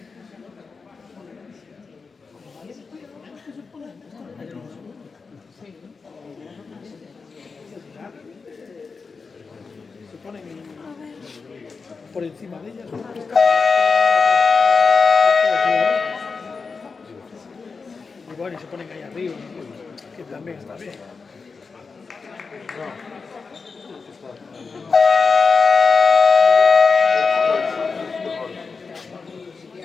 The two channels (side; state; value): right; quieter; 4.7 dB